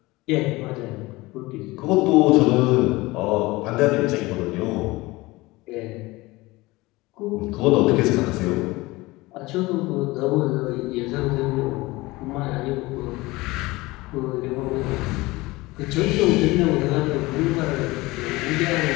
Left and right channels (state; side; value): quieter; right; 21.1 dB